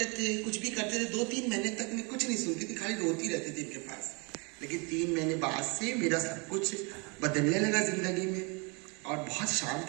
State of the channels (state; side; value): quieter; left; 31.1 dB